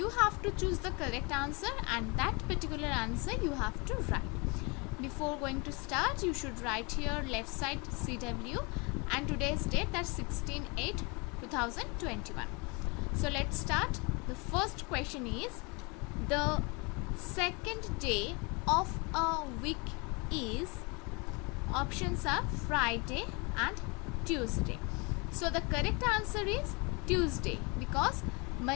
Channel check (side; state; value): right; quieter; 29.6 dB